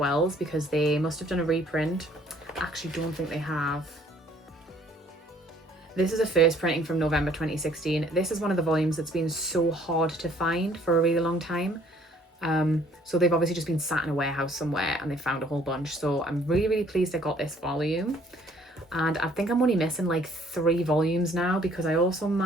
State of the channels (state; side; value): normal; both; correlation 0.60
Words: because they must have done a reprint. I actually don't think they have. This is a first printing from November 2016. This is one of the volumes that's been so hard to find for a really long time. So they've obviously just been sat in a warehouse somewhere and they found a whole bunch. So I'm really, really pleased I got this volume. And I think I'm only missing like 3 volumes now because I also